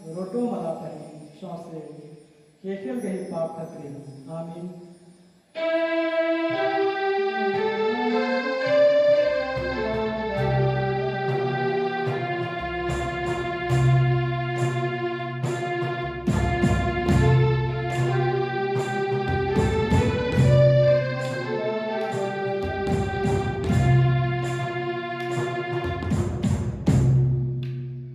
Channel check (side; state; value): both; identical; correlation 1.00